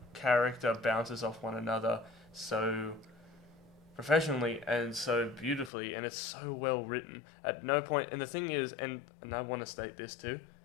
character bounces off one another so professionally and so beautifully, and it's so well written. At no point, and the thing is, and I want to state this too,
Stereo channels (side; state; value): right; drops out; at 5.7 s